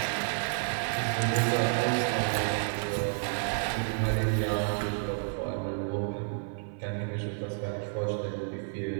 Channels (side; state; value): left; silent; 58 dB below the other